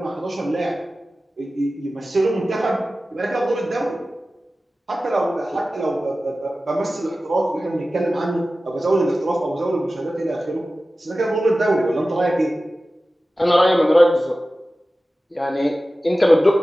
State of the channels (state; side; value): normal; both; correlation 0.95